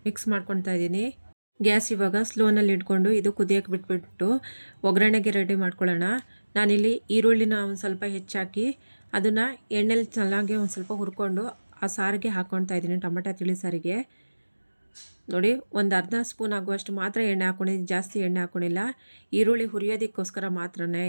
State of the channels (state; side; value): inverted; both; correlation -1.00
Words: ಮಿಕ್ಸ್ ಮಾಡ್ಕೊತಾ ಇದ್ದೀನಿ. ಗ್ಯಾಸ್ ಇವಾಗ ಸ್ಲೋನಲ್ಲಿ ಇಟ್ಕೊಂಡು ಇದು ಕುದಿಯೋಕ್ಕೆ ಬಿಟ್ಬಿಟ್ಟು ಒಗ್ಗರಣೆಗೆ ರೆಡಿ ಮಾಡ್ಕೊಳ್ಳೋಣ. ನಾನಿಲ್ಲಿ ಈರುಳ್ಳಿನ ಒಂದು ಸ್ವಲ್ಪ ಹೆಚ್ಚಾಕಿ ಅದನ್ನು ಎಣ್ಣೆಲಿ ಚೆನ್ನಾಗಿ ಒಂದು ಸ್ವಲ್ಪ ಹುರ್ಕೊಂಡು ಆ ಸಾರಿಗೆ ಹಾಕ್ಕೊಳ್ತಾ ಇದ್ದೀನಿ. ಟೊಮೆಟೊ ತಿಳಿ ಸಾರಿಗೆ ನೋಡಿ ಒಂದು ಅರ್ಧ ಸ್ಪೂನ್ ಆಗುವಷ್ಟು ಮಾತ್ರ ಎಣ್ಣೆ ಹಾಕ್ಕೊಂಡಿದ್ದೀನಿ, ಜಾಸ್ತಿ ಎಣ್ಣೆ ಹಾಕ್ಕೊಂಡಿಲ್ಲ. ಈರುಳ್ಳಿ ಹುರಿಯೋದಕ್ಕೋಸ್ಕರ ಮಾತ್ರನೇ